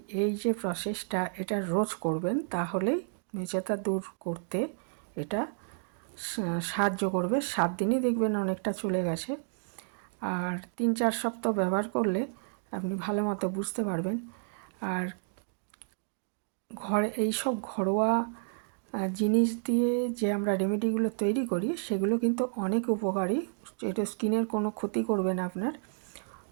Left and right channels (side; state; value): left; silent; 57 dB below the other